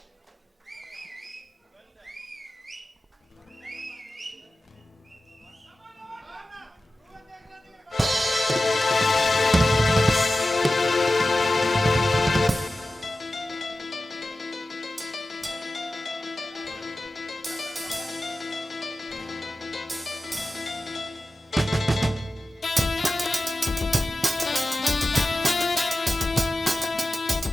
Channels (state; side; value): normal; both; correlation 0.94